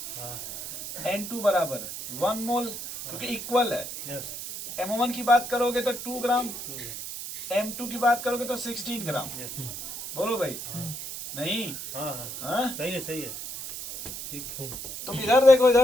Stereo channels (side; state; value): right; noise; hiss, 8 dB below the sound